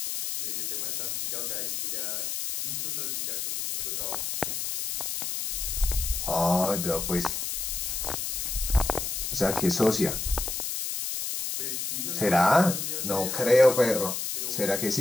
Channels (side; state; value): left; noise; hiss, 3 dB below the sound